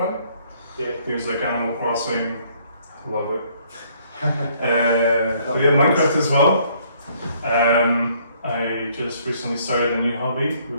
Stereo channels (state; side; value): inverted; both; correlation -0.64